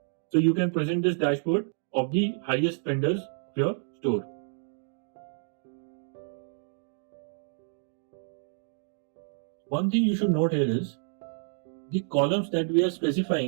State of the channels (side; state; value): left; silent; digital silence